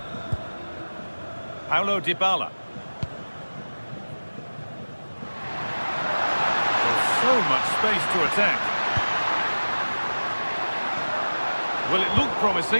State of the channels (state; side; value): inverted; both; correlation -1.00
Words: Paulo Dybala. There's so much space to attack. Well, it looked